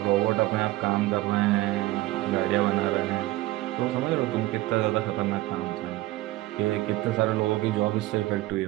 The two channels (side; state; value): left; quieter; 17.8 dB